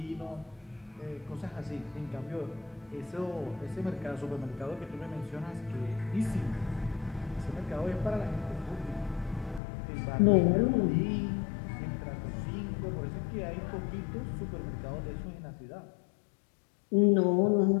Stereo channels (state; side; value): drops out; right; at 9.6 s